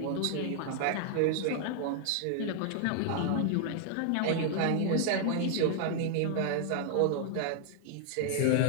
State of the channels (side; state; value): both; different; correlation 0.00